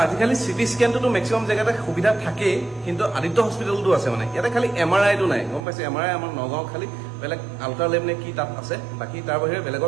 আজিকালি চিটি স্কেনটোতো মেক্সিমাম জেগাতে সুবিধা থাকেই কিন্তু আদিত্য হস্পিটেলটো আছে মানে ইয়াতে খালি MRIটো নাই গম পাইছে MRI আমাৰ নগাঁও খালি বেলেগ আল্ট্ৰালেব নে কি তাত আছে বাকী তাৰ বাহিৰে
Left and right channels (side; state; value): left; drops out; at 5.6 s